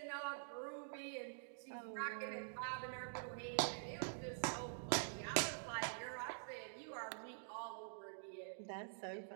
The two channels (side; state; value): left; silent; digital silence